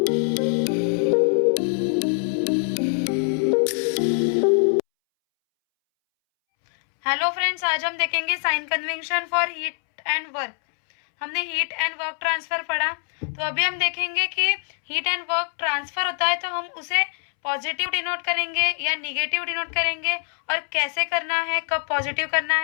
फ्रेंड्स, आज हम देखेंगे sign convention for heat and work. हमने हीट एंड वर्क ट्रांसफर पढ़ा, तो अभी हम देखेंगे कि हीट एंड वर्क ट्रांसफर होता है तो हम उसे पॉजिटिव डिनोट करेंगे या निगेटिव डिनोट करेंगे, और कैसे करना है, कब पॉजिटिव करना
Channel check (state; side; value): silent; right; 63 dB below the other